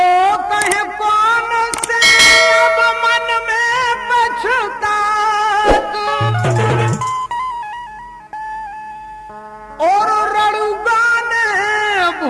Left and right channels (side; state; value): both; identical; correlation 1.00